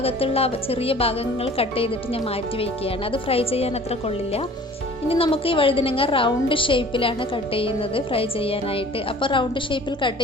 ചെറിയ ഭാഗങ്ങൾ കട്ട് ചെയ്തിട്ട് ഞാൻ മാറ്റി വയ്ക്കുകയാണ്. അത് ഫ്രൈ ചെയ്യാൻ അത്ര കൊള്ളില്ല. ഇനി നമുക്ക് ഈ വഴുതിനങ്ങ റൗണ്ട് ഷേപ്പിലാണ് കട്ട് ചെയ്യുന്നത് ഫ്രൈ ചെയ്യാനായിട്ട്. അപ്പോൾ റൗണ്ട് ഷേപ്പിൽ കട്ട്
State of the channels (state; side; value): normal; both; correlation 0.48